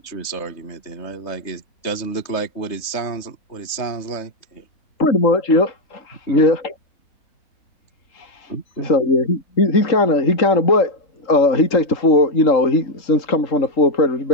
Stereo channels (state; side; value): late; right; 3.3 ms